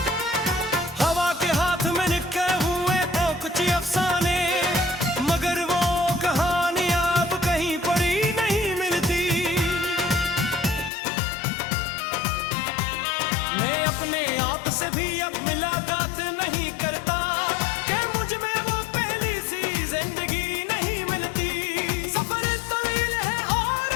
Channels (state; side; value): drops out; right; at 10.9 s